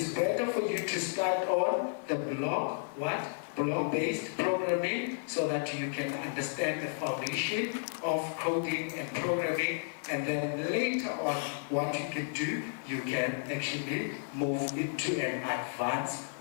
better for you to start on the block-based programming, so that you can understand the foundation of coding and programming, and then later on, what you can do, you can actually move into an advanced,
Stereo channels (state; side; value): silent; right; digital silence